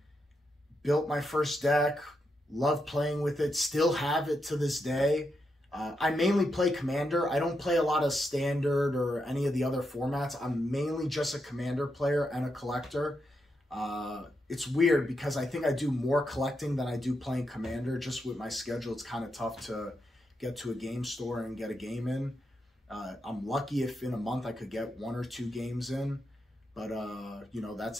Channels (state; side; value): normal; both; correlation 0.83